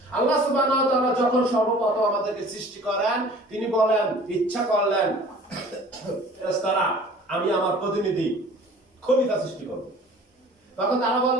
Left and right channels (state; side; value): normal; both; correlation 0.47